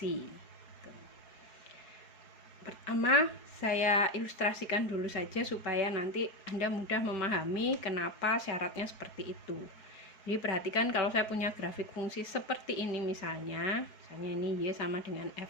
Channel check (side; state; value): right; late; 4.7 ms